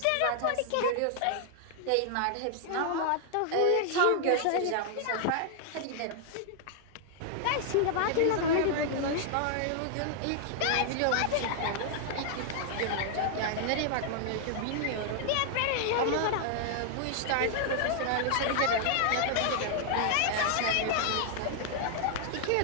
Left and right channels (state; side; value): different; both; correlation 0.00